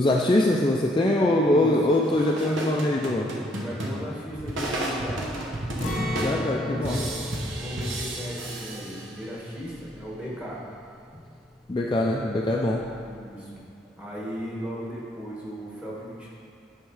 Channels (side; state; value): both; normal; correlation 0.68